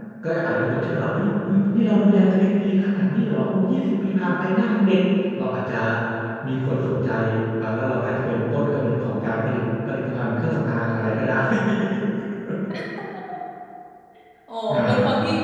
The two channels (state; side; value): identical; both; correlation 1.00